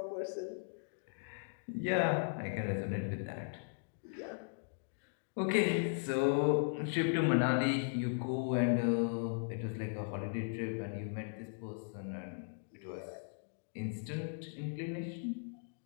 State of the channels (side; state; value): right; silent; digital silence